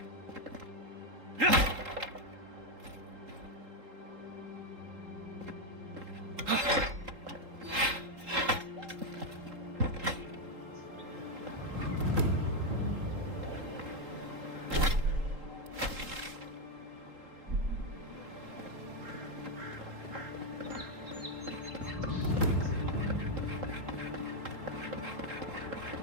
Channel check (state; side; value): late; left; 3.8 ms